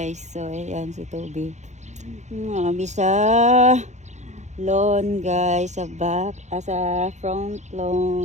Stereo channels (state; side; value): late; left; 0.34 ms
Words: So ayan si Toby. Kami sa lawn guys, sa back, sa front